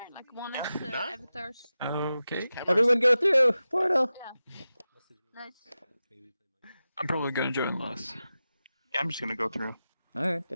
like one of the avatars. Okay. Everyone go through Portal. Yeah. Nice. I'm probably gonna join last. Yeah, I'm just gonna go through. Alright,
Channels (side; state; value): both; inverted; correlation -0.93